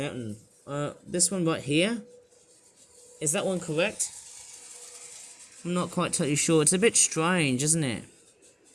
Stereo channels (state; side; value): identical; both; correlation 1.00